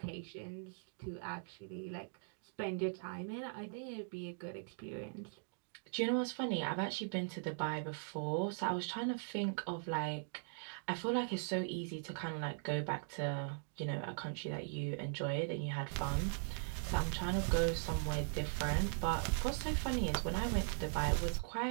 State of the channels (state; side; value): silent; left; digital silence